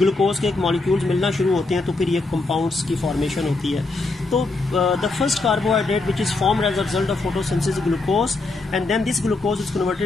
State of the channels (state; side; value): quieter; right; 3.3 dB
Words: के एक मॉलिक्यूल्स मिलना शुरू होते हैं तो फिर ये कंपाउंड्स की फॉर्मेशन होती है। तो the first carbohydrate which is formed as a result of photosynthesis glucose, and then this glucose is